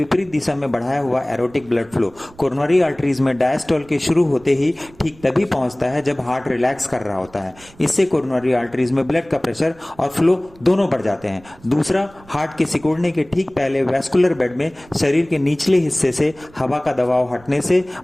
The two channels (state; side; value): noise; right; rumble, 25 dB below the sound